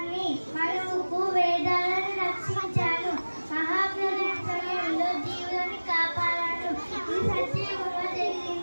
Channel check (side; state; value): both; inverted; correlation -1.00